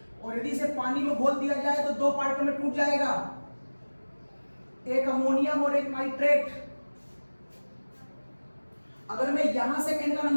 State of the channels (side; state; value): both; inverted; correlation -1.00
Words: और यदि इसे पानी में घोल दिया जाए तो 2 पार्टों में टूट जाएगा, एक अमोनियम और एक नाइट्रेट। अगर मैं यहां से n का